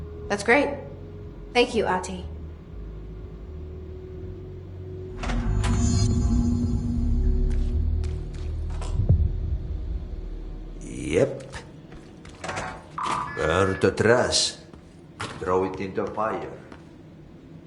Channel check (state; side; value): identical; both; correlation 1.00